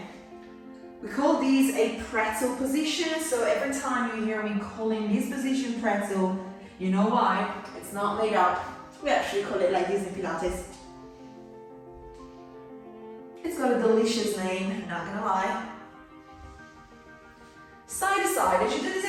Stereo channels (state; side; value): identical; both; correlation 1.00